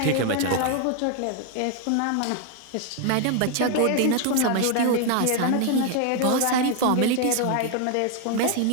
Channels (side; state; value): both; different; correlation 0.00